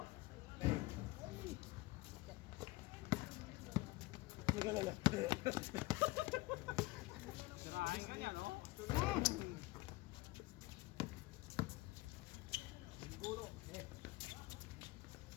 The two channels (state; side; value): quieter; right; 20.9 dB